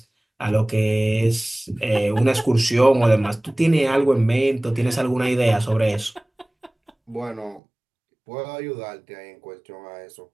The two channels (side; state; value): left; drops out; at 7.6 s